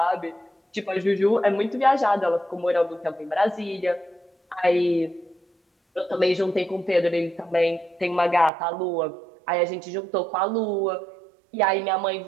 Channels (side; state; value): left; drops out; at 8.5 s